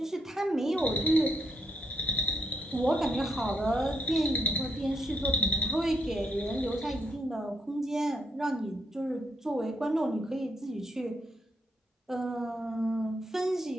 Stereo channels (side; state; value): both; normal; correlation 0.78